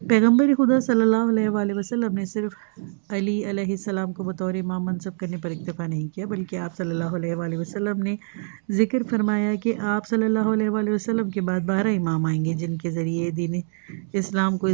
پیغمبر خدا صلی اللہ علیہ وآلہ وسلم نے صرف علی علیہ السلام کو بطور امام منصب کرنے پر اکتفا نہیں کیا، بلکہ آپ صلی اللہ علیہ وآلہ وسلم نے ذکر فرمایا کہ آپ صلی اللہ علیہ وآلہ وسلم کے بعد 12 امام آئیں گے جن کے ذریعے دین اسلام کو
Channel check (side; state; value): left; silent; digital silence